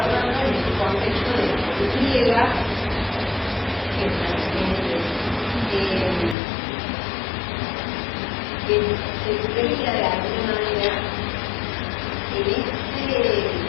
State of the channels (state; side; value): drops out; right; at 6.4 s